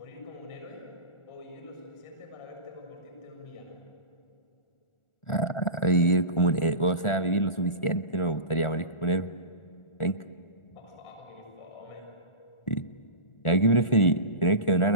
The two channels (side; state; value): right; late; 1.4 ms